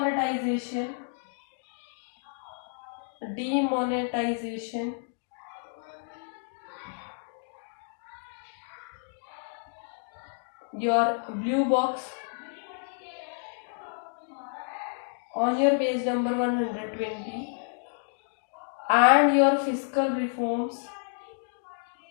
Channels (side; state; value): right; silent; 58 dB below the other